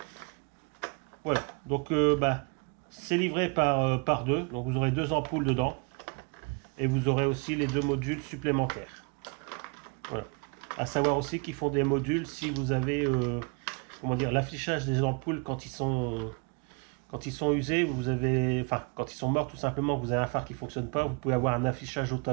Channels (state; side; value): quieter; left; 33.3 dB